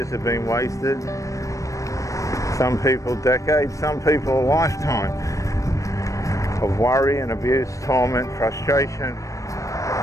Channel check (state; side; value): late; right; 0.16 ms